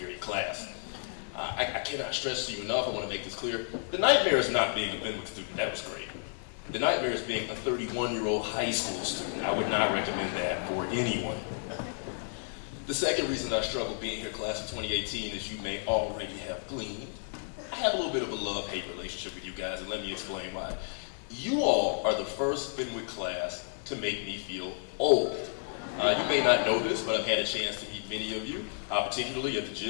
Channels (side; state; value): right; silent; 57 dB below the other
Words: class. I cannot stress to you enough, I want to make this clear. The nightmare is not being a Fenwick student, that was great. The nightmare is being a 31-year-old high school student. I would not recommend that for anyone. The second reason I struggle being here class of 2018, as you may already have gleaned, I have a little bit of a love-hate relationship with you guys, and let me explain why. You all are the first Fenwick class to make me feel old. You may not know this, but I've had a chance to meet many of you, particularly at the